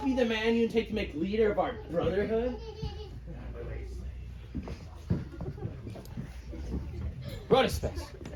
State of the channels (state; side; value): identical; both; correlation 1.00